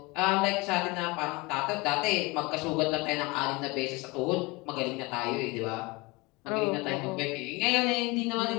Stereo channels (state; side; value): quieter; right; 24.1 dB